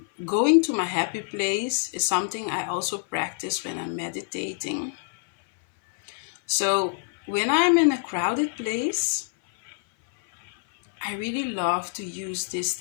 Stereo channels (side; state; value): right; silent; 57 dB below the other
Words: going to my happy place is something I also practice when I'm meditating. So when I'm in a crowded place, I really love to use this